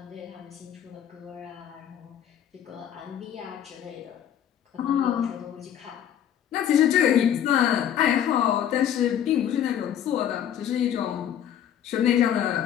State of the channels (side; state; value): right; quieter; 9.9 dB